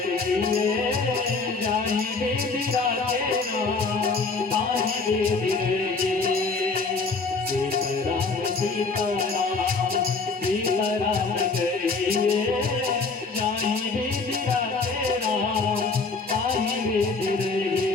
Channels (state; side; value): quieter; right; 4.1 dB